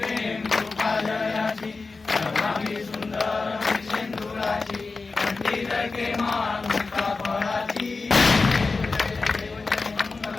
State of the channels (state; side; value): quieter; right; 4.0 dB